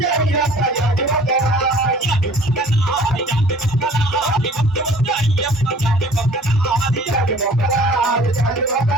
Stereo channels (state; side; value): normal; both; correlation 0.50